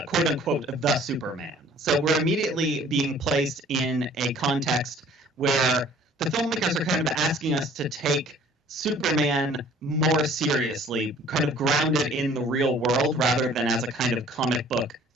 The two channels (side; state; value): both; normal; correlation 0.53